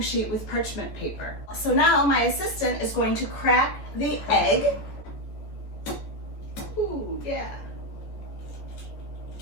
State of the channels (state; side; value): late; right; 14 ms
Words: sheet with parchment paper. So now my assistant is going to crack the egg. Ooh, yeah.